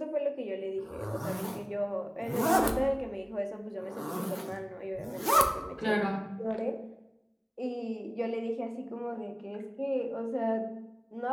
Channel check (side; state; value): both; identical; correlation 1.00